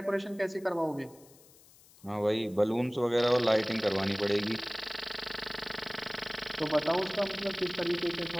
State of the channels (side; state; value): left; noise; hiss, 25 dB below the sound